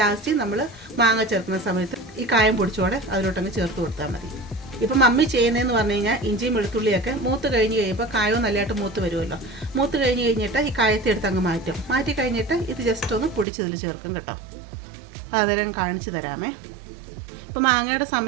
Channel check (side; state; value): left; drops out; at 13.5 s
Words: നമ്മൾ മാങ്ങ ചേർക്കുന്ന സമയത്ത് ഈ കായം പൊടിച്ചോടെ അതിലോട്ടങ്ങ് ചേർത്ത് കൊടുത്താൽ മതി. ഇപ്പം മമ്മി ചെയ്യുന്നതെന്ന് പറഞ്ഞു കഴിഞ്ഞാൽ ഇഞ്ചിയും വെളുത്തുള്ളിയൊക്കെ മൂത്ത് കഴിഞ്ഞ് കഴിയുമ്പോൾ കായവും നല്ലതായിട്ട് മൂത്ത് വരുമല്ലോ. മൂത്ത് കഴിഞ്ഞിട്ട് ഈ കായത്തെ എടുത്ത് അങ്ങ് മാറ്റി കഴിഞ്ഞിട്ട് ഇത് ജസ്റ്റ് ഒന്ന് പൊടിച്ചതിൽ ചേർക്കും കേട്ടോ. അതെല്ലാം കാണിച്ചു തരാമേ. ഇപ്പോൾ മാങ്ങയുടെ